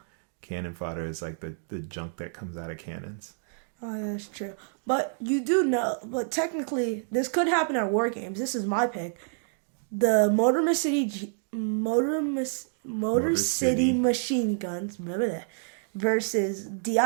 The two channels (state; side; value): silent; left; digital silence